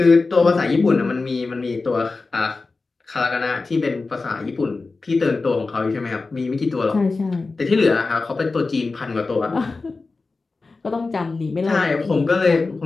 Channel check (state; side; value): quieter; right; 3.8 dB